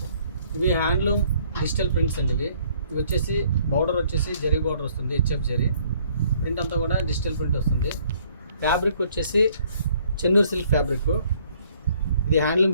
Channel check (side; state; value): both; inverted; correlation -0.62